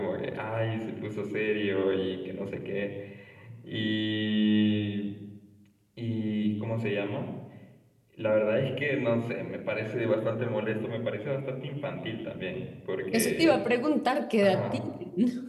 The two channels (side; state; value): both; identical; correlation 1.00